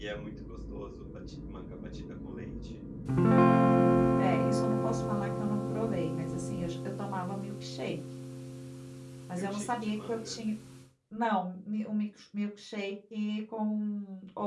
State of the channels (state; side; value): identical; both; correlation 1.00